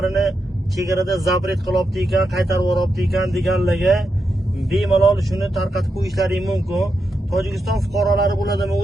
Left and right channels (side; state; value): both; normal; correlation 0.86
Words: chegarada zapret qilyapti ekan, qaytarib yuryapti ekan deganlarga bemalol shuni tarqatib qo'yishlaring mumkin. Tojikiston fuqarolari bo'ladimi,